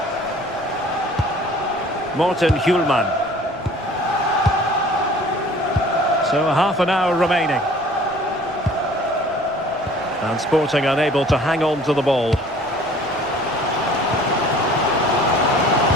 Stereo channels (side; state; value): left; noise; rumble, 27 dB below the sound